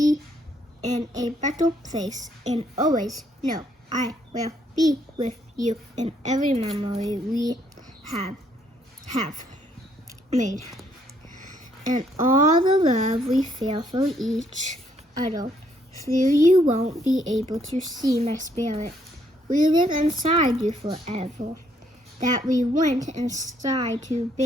in a better place, and always know I will be with you in every memory we have made, and all the love we feel for each other. Though you won't be able to see my spirit, we live inside you forever. That we went inside to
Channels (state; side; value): normal; both; correlation 0.69